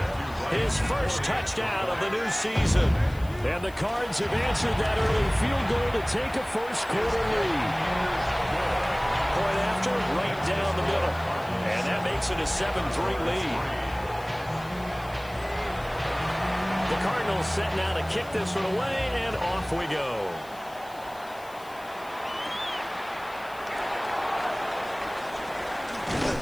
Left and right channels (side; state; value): left; noise; hiss, 23 dB below the sound